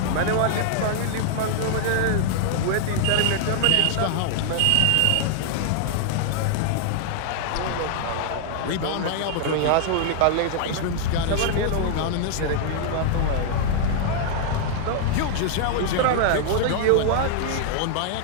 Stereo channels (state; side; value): different; both; correlation -0.01